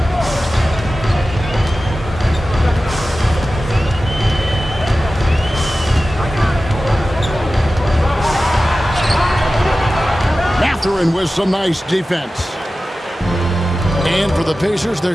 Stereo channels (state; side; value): normal; both; correlation 0.95